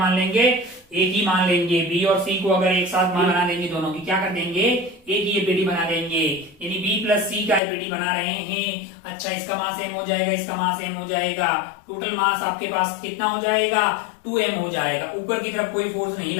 लेंगे? एक ही मान लेंगे। बी और सी को अगर एक साथ मान बना देंगे, दोनों की क्या कर देंगे? एक ही एपीडी बना देंगे, यानी बी प्लस सी का एपीडी बना रहे हैं। अच्छा, इसका मास m हो जाएगा, इसका मास m हो जाएगा, टोटल मास आपके पास कितना हो जाएगा? 2m हो जाएगा। ऊपर की तरफ कोई फोर्स नहीं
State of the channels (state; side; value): drops out; right; at 7.6 s